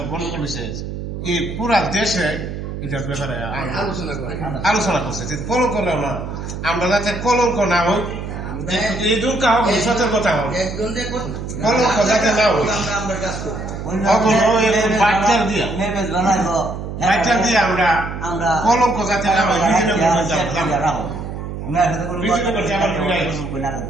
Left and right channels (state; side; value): noise; right; hum, 7 dB below the sound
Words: গন্ডগোল হয়েছে এই পুরা দেশে এটার ব্যাপারে আলোচনা করছে। কলঙ্ক না, আমরা যাতে কলঙ্ক না হই, এই দুঃখ হোক, সতর্কতা হোক, কলঙ্ক যাতে না হই, বাচ্চার দিয়ে আমরা কলঙ্ক যাতে না